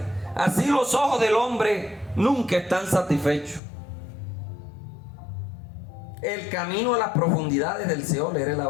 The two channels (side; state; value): right; drops out; at 3.6 s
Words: Así los ojos del hombre nunca están satisfechos. El camino a las profundidades del Seol era el